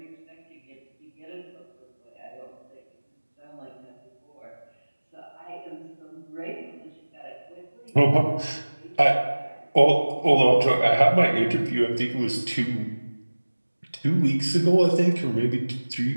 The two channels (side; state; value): both; inverted; correlation -1.00